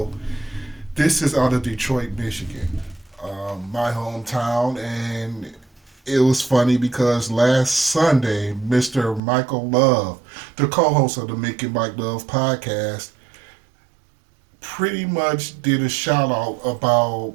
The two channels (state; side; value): drops out; left; at 9.2 s